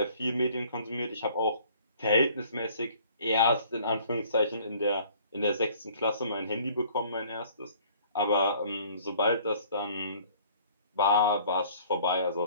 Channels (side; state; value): both; inverted; correlation -0.55